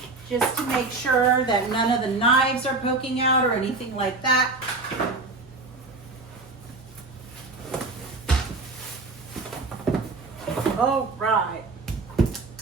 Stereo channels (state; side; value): quieter; left; 3.6 dB